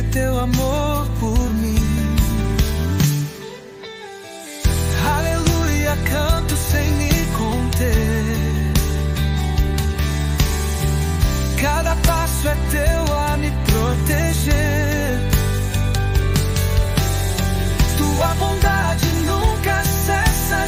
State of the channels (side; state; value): both; identical; correlation 1.00